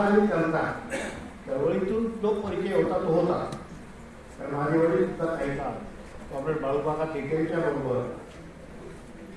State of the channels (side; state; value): both; identical; correlation 1.00